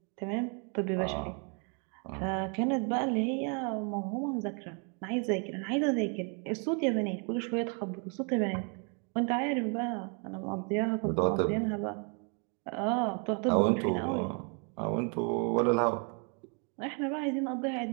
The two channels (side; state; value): left; quieter; 37.4 dB